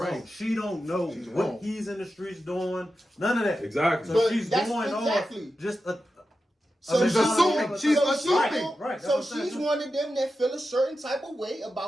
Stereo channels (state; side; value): normal; both; correlation 0.91